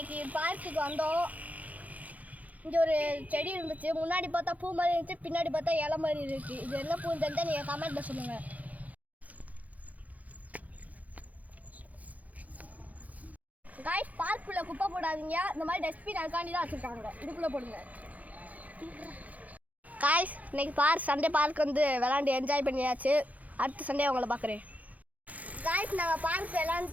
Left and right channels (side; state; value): left; late; 0.075 ms